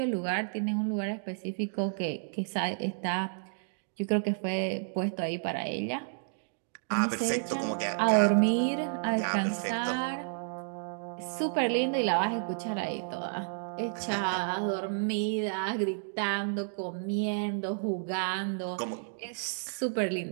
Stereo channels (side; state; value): left; silent; digital silence